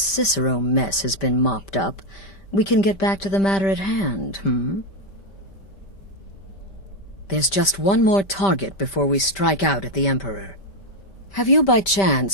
mess has been mopped up, we can get back to the matter at hand, There's just one more target before we strike out at the Emperor. Have you by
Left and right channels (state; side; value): late; right; 5.1 ms